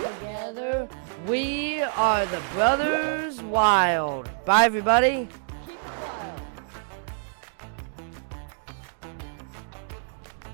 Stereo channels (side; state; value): left; silent; digital silence